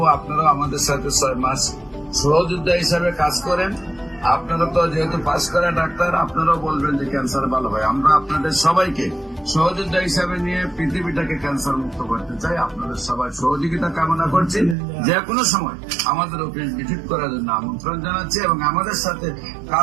আপনারা আমাদের সাথে 6 মাস সহযোদ্ধা হিসাবে কাজ করেন। আপনারা তো যেহেতু পাস করা ডাক্তার, আপনারাও বলবেন যে ক্যান্সার ভালো হয়। আমরা আপনাদের সবাইকে সহযোদ্ধা হিসাবে নিয়ে পৃথিবীটাকে ক্যান্সার মুক্ত করতে চাই। আপনাদের সবাই সহযোগিতা কামনা করছি। যে কোনো সময় আমাদের অফিস ভিজিট করার জন্য আমন্ত্রণ জানাচ্ছি এবং আমাদের সাথে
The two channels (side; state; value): left; drops out; at 14.8 s